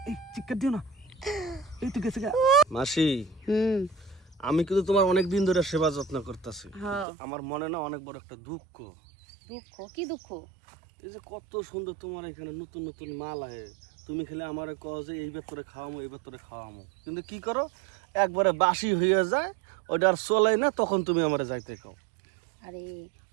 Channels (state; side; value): drops out; left; at 7.1 s